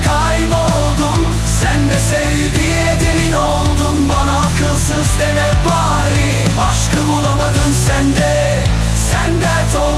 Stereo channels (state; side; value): identical; both; correlation 1.00